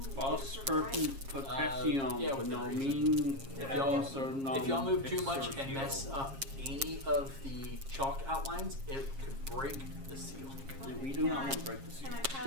Vos Just per right. potassium yeah, within nomin If y'all move too much and mess up any of the chalk outlines, it could break the seal. We do not want to break the seal. Can I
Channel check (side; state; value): left; late; 7.4 ms